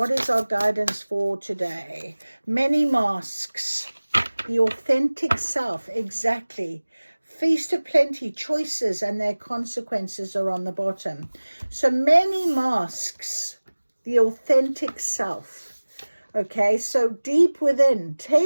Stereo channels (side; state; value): both; inverted; correlation -1.00